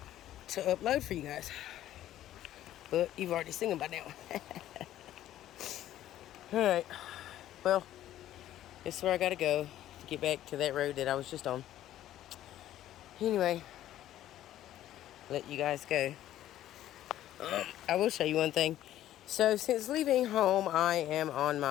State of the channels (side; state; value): right; quieter; 12.9 dB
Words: to upload for you guys. But you've already seen them by now. Alright, well, this is where I gotta go to get back to that road that I was just on. Anyway, let you guys go. I will show you one thing. So since leaving home, I am on